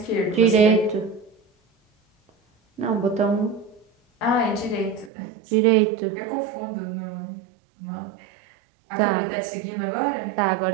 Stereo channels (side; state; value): left; drops out; at 5.1 s